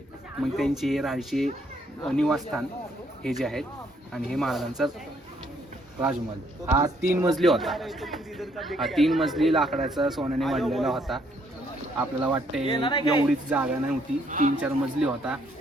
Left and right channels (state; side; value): normal; both; correlation 0.69